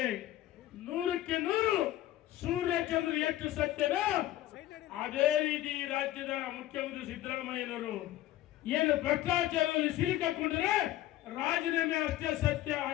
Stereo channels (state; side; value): quieter; right; 14.4 dB